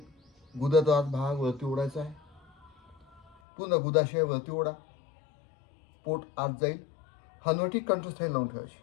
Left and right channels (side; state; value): right; drops out; at 3.4 s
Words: गुदाचा भाग वरती ओढायचा आहे. पूर्ण गुदाशय वरती ओढा. पोट आत जाईल. हनुवटी कंठस्थायी लावून ठेवायची.